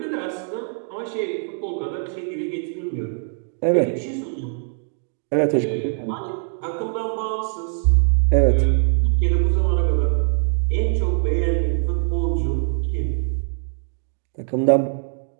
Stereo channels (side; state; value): left; silent; 64 dB below the other